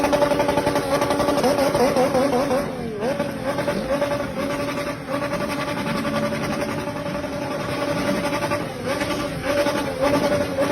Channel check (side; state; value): both; identical; correlation 1.00